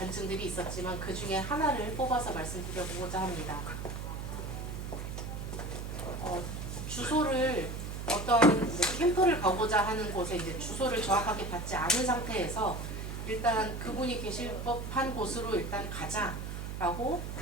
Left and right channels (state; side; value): noise; right; hum, 6 dB below the sound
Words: 있었지만 그 중에 하나를 뽑아서 말씀드려보고자 합니다. 주소를 어떤 캠프를 가고자 하는 곳에 이제 주소를 정확하게 받지 않은 상태에서 일단 그분이 계실 법한 곳으로 일단 가자라고